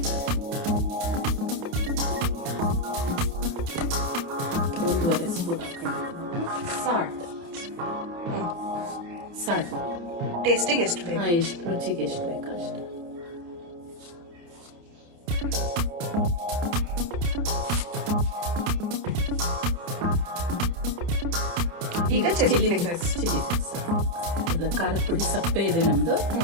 ಸಾಲ್ಟ್ ಟೇಸ್ಟಿಗೆ ಎಷ್ಟು ಬೇಕು? ಎಷ್ಟು ರುಚಿಗೆ ಎಷ್ಟು ಬೇಕು ಅಷ್ಟು. ಈಗ ಚಿಲ್ಲಿ ಖಾರದ ಪುಡಿ ಸಪ್ಪೆ ಇದೆ ನಮ್ದು.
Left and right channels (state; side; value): late; left; 29 ms